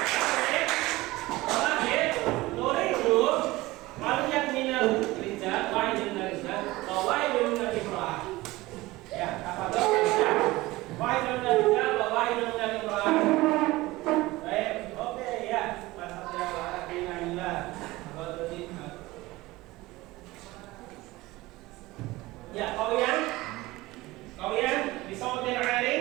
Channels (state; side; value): quieter; left; 19.6 dB